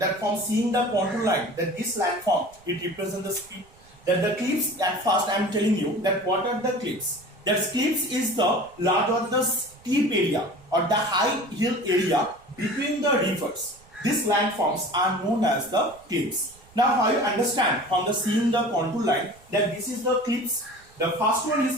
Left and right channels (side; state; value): right; noise; rumble, 27 dB below the sound